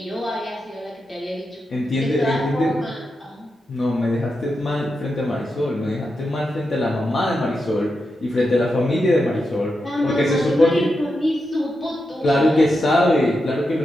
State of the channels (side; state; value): both; normal; correlation 0.87